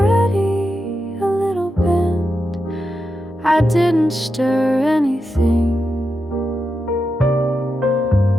a little bent, I didn't stir anything,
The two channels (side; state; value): both; normal; correlation 0.87